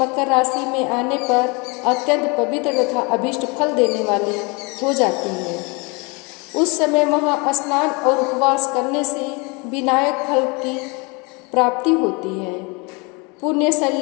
राशि में आने पर अत्यंत पवित्र तथा अभीष्ट फल देने वाली हो जाती है। उस समय वहाँ स्नान और उपवास करने से विनायक फल की प्राप्ति होती है। पुण्य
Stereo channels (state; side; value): quieter; right; 29.4 dB